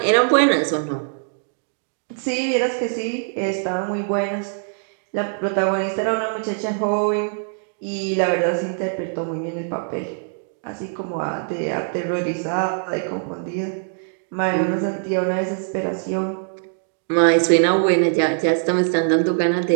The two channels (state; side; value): silent; left; digital silence